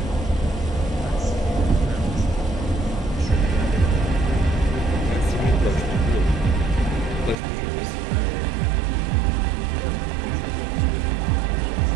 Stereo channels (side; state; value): left; drops out; at 7.4 s